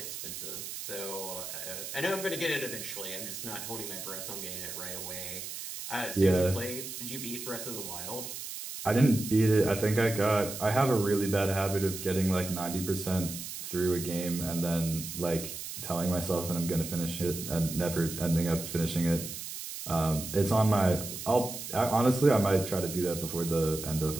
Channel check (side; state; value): right; noise; hiss, 8 dB below the sound